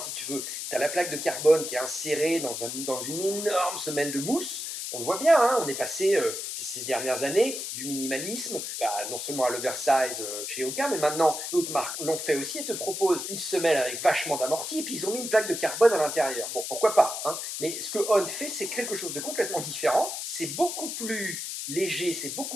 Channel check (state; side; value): noise; left; hiss, 5 dB below the sound